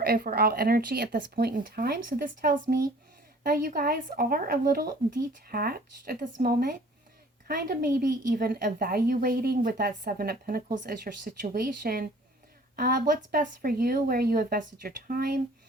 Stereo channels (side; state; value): both; normal; correlation 0.51